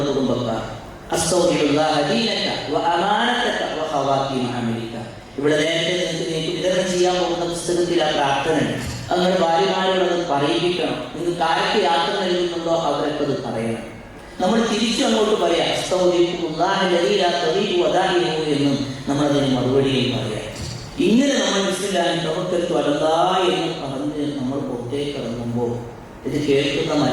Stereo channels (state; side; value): identical; both; correlation 1.00